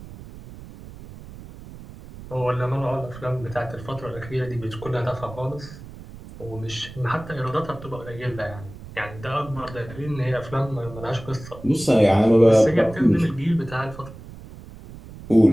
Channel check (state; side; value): noise; right; rumble, 16 dB below the sound